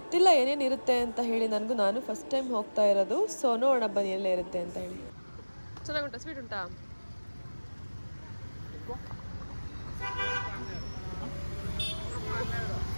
ಏನೇನಿರುತ್ತೆ ಅಂತ ಹೇಳಿ, ನಾನು ಫಸ್ಟ್ ಟೈಮ್ ಹೋಗ್ತಾ ಇರೋದು. ಸೊ ನೋಡೋಣ ಬನ್ನಿ ಎಲ್ಲೇ ಇರುತ್ತೆ ಅಂತ ಹೇಳಿ. ಚೆನ್ನಾಗುಂಟಾ? ಸ್ವೀಟ್ ಉಂಟಾ?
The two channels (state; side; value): inverted; both; correlation -1.00